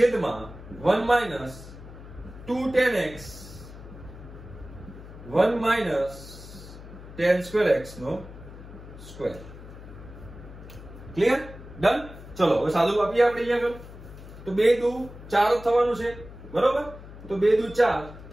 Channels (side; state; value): left; noise; hum, 15 dB below the sound